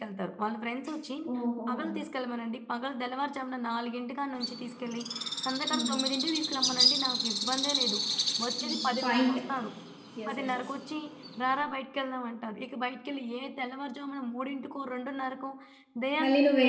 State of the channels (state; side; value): identical; both; correlation 1.00